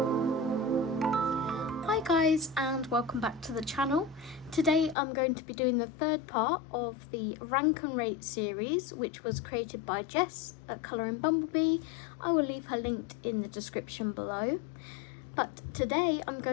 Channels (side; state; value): right; drops out; at 5.0 s